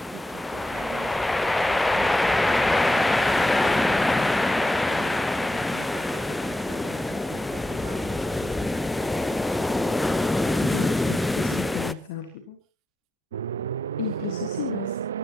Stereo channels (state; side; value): normal; both; correlation 0.87